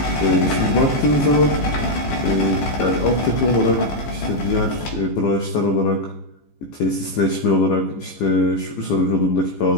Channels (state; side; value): late; right; 15 ms